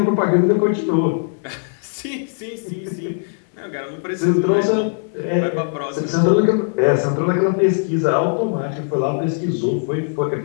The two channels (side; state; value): right; silent; digital silence